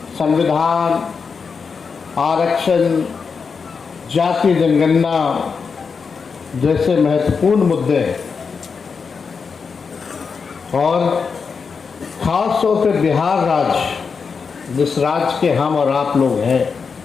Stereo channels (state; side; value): quieter; right; 5.5 dB